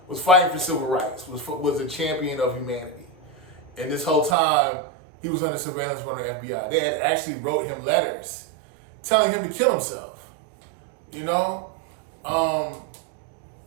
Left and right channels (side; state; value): left; drops out; at 4.4 s